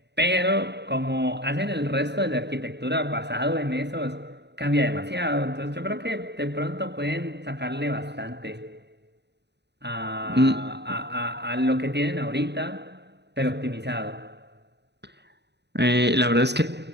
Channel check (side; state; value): left; late; 0.50 ms